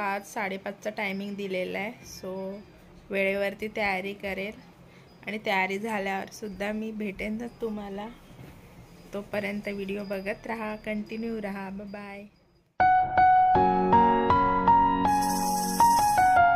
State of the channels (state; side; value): identical; both; correlation 1.00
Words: टायमिंग दिलेला आहे। सो वेळेवरती तयारी करेल आणि तयारी झाल्यावर सुद्धा मी भेटेन तुम्हाला। तोपर्यंत व्हिडिओ बघत राहा, कंटिन्यू राहा। Bye bye.